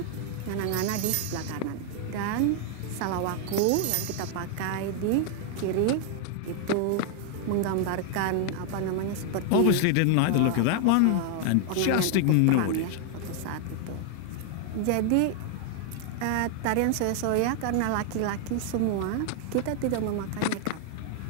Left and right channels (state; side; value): different; both; correlation 0.00